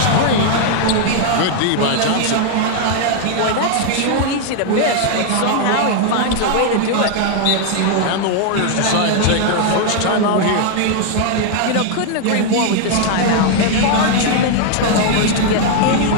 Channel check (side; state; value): both; different; correlation 0.00